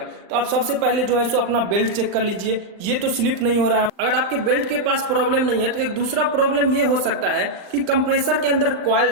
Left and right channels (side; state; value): left; late; 39 ms